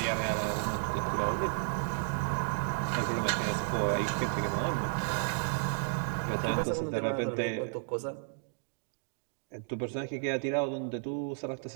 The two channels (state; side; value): silent; left; digital silence